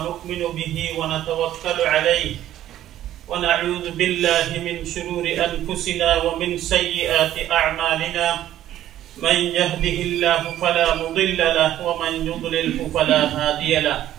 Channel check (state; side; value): quieter; left; 12.6 dB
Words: به ونتوكل عليه ونعوذ بالله من شرور أنفسنا ومن سيئات أعمالنا. من يهده الله فلا مضل له ومن يضلله فلا هادي له.